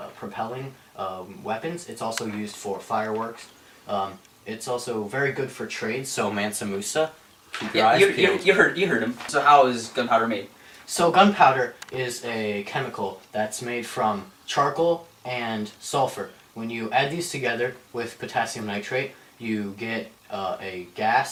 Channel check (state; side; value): identical; both; correlation 1.00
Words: propelling weapons, it's also used for fireworks. It's also very good for trade, so Mansa Musa. Yeah, you heard him. So how is gunpowder made? So gunpowder is a chemical that's made from charcoal and sulfur. When you add these together with potassium nitrate, you get a